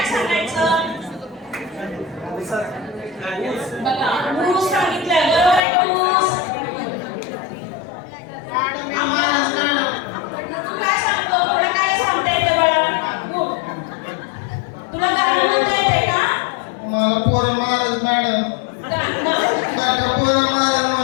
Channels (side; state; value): right; drops out; at 5.6 s